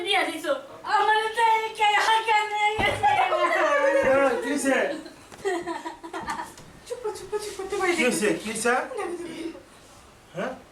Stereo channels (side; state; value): both; identical; correlation 1.00